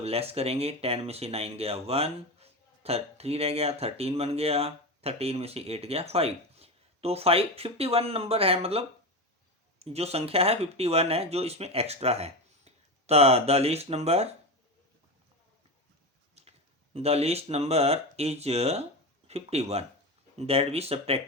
लेस करेंगे 10 में से 9 गया 1, 3 रह गया, 13 बन गया, 13 में से 8 गया 5। तो 51 नंबर है, मतलब जो संख्या है 51 है जो इसमें एक्स्ट्रा है। The least number is 51 that we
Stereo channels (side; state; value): both; normal; correlation 0.20